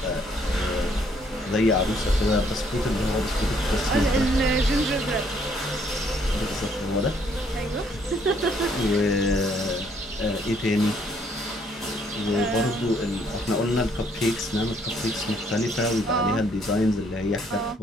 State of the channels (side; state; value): both; normal; correlation 0.66